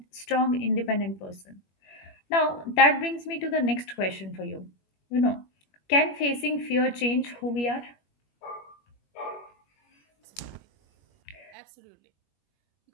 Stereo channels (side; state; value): right; late; 21 ms